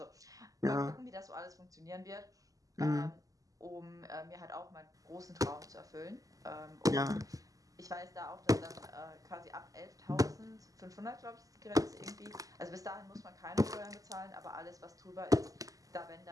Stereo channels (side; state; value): left; late; 0.17 ms